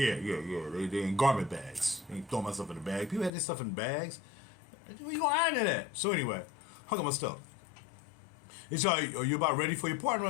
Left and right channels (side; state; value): right; drops out; at 3.3 s